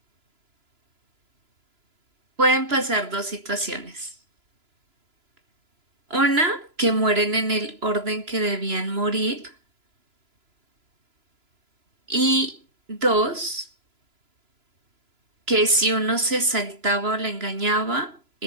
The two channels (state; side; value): late; left; 3.0 ms